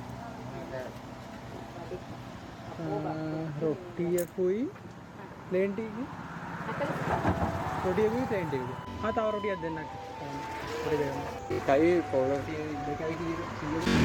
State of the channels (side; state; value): both; identical; correlation 1.00